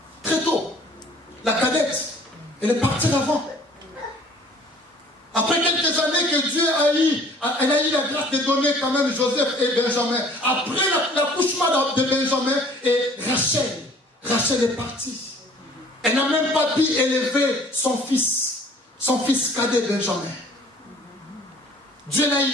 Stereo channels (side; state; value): both; normal; correlation 0.53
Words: Très tôt. La cadette, elle est partie avant. Après quelques années que Dieu elle a eu la grâce de donner quand même Joseph et Benjamin. Après l'accouchement de Benjamin et Rachel est partie. Elle n'a même pas pu élever son fils cadet Benjamin. Dieu l'a